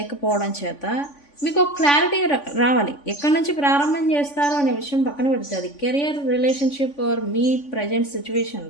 చేత మీకు ఒక క్లారిటీ రావాలి. ఎక్కడి నుంచి ప్రారంభం చేస్తారో అనే విషయం పక్కన పెడితే, అది కెరియర్, రిలేషన్షిప్ ఆర్ మీ ప్రజెంట్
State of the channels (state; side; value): late; right; 3.5 ms